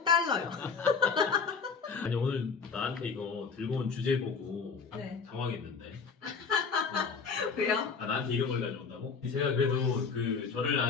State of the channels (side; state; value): right; quieter; 5.3 dB